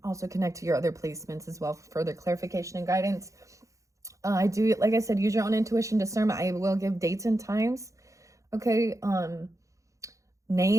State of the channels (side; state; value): left; late; 0.15 ms